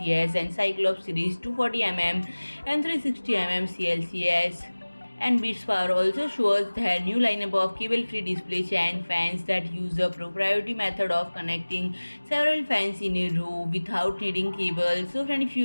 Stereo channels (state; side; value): inverted; both; correlation -1.00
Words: and Cyclops series 240mm and 360mm CLCS. And Bitspower also shows their new lineup of cable-free display fan fans that use a proprietary method of connecting several fans in a row without needing cables. So friend, if